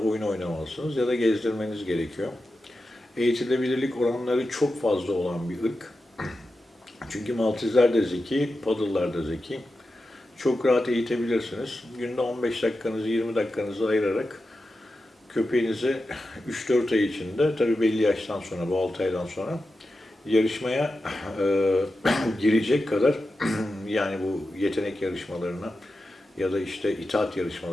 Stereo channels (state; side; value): normal; both; correlation 0.91